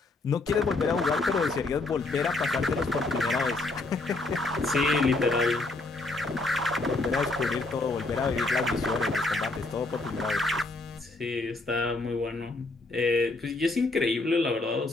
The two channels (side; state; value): right; quieter; 3.1 dB